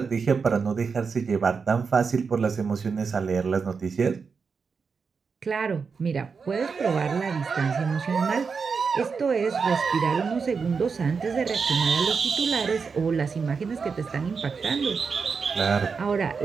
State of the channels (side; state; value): left; quieter; 5.4 dB